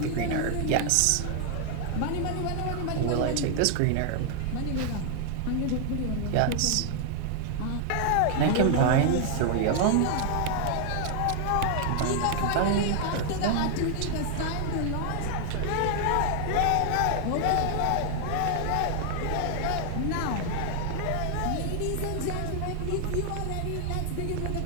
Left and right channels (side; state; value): both; different; correlation 0.00